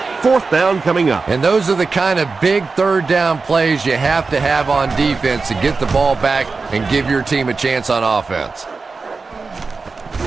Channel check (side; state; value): left; quieter; 4.3 dB